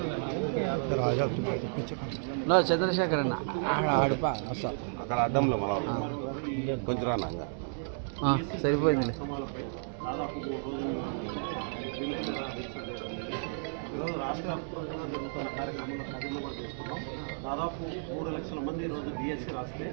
చంద్రశేఖర్ అన్న ఆడిపా వస్తాం అక్కడ అడ్డంలో మన కొంచెం రానా సరిపోయింది. రాష్ట్ర వ్యాప్తంగా జరుగుతున్న కార్యక్రమంలో ఖాళీలో కూడా తీసుకున్నాం. దాదాపు 3 లక్షల మంది ఈరోజు డిఎస్సి రాస్తే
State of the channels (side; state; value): left; silent; 56 dB below the other